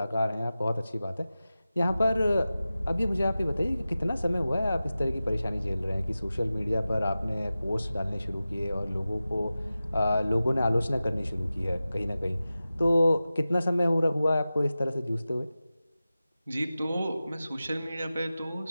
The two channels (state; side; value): inverted; both; correlation -0.95